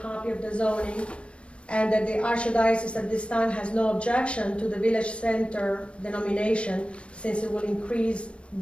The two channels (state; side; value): late; right; 0.060 ms